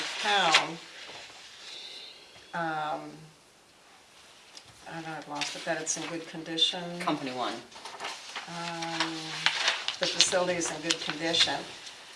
town. I don't know, I've lost it, that it's in good condition. Company One. The facility is in good condition.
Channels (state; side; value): identical; both; correlation 1.00